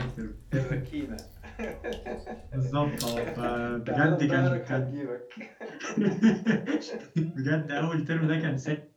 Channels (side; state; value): both; identical; correlation 1.00